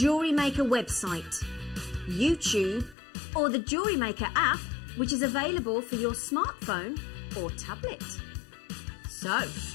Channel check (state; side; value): drops out; right; at 3.0 s